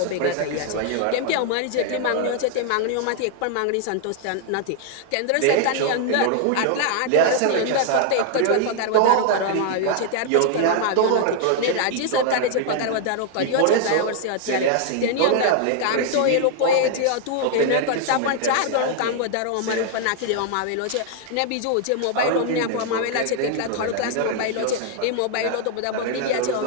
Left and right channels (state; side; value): different; both; correlation -0.01